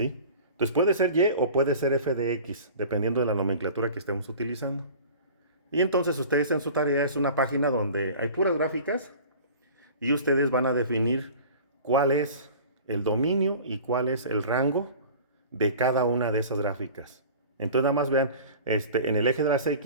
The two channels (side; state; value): both; inverted; correlation -0.41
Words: Entonces puede ser y o puede ser f de x, dependiendo de la nomenclatura que estemos utilizando. Y entonces ustedes en su tarea es una página donde hay puras gráficas y ustedes van a definir cuál es el dominio y cuál es el rango de cada una de esas gráficas. Entonces nada más vean en el eje de las